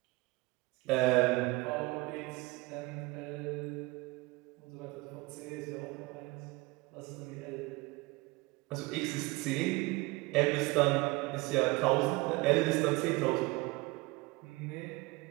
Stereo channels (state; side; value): quieter; left; 23.2 dB